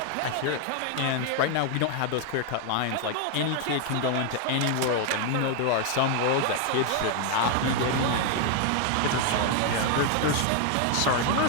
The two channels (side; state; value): both; different; correlation 0.00